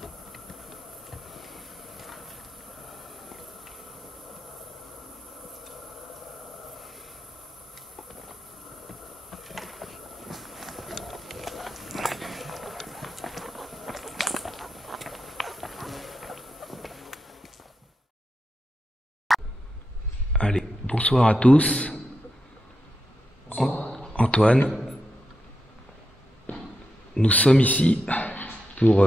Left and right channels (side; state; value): both; normal; correlation 0.86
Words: Allez, bonsoir à tous. Antoine, nous sommes ici pour